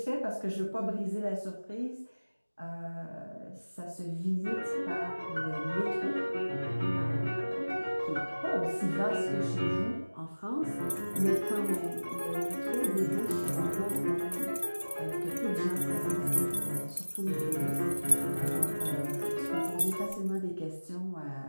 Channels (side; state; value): both; inverted; correlation -1.00